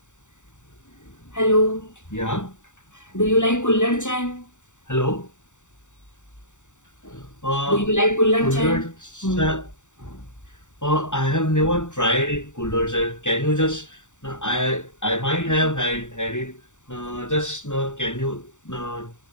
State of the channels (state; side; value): late; right; 0.85 ms